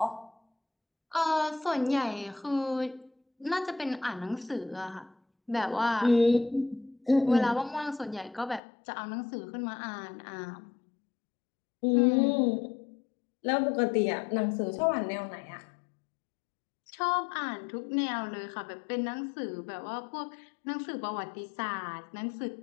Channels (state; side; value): drops out; right; at 8.6 s